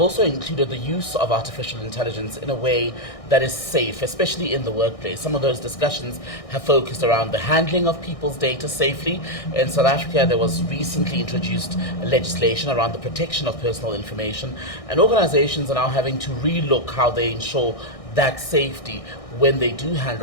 also included the use of artificial intelligence in a way that is safe, especially in the workplace. Some of those discussions have focused around the handling of people's data safely. In South Africa, there was recently introduced legislation around the protection of personal information, and organizations are now having to relook how they ensure that safety when they do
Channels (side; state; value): right; late; 1.6 ms